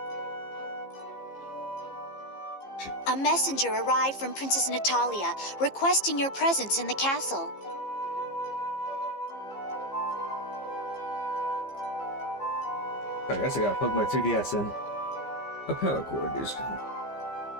A messenger arrived from Princess Natalia, requesting your presence in the castle. I guess I gotta plug my 3DS in. A power cord is.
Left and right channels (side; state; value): right; late; 15 ms